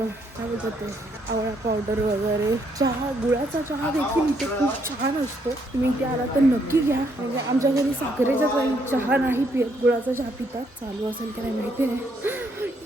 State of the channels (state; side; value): normal; both; correlation 0.72